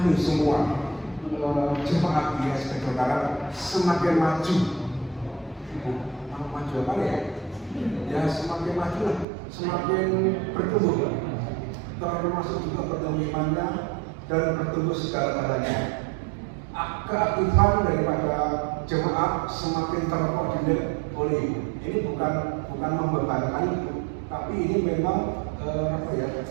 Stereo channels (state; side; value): drops out; left; at 9.2 s